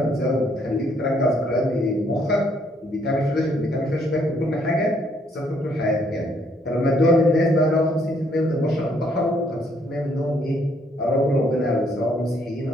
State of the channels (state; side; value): normal; both; correlation 0.68